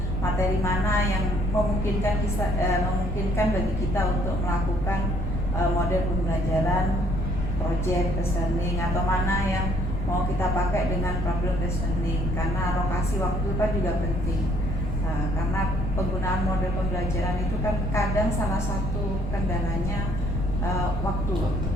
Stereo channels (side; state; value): left; noise; rumble, 3 dB below the sound